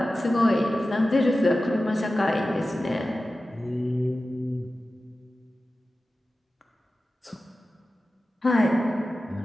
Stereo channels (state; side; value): normal; both; correlation 0.94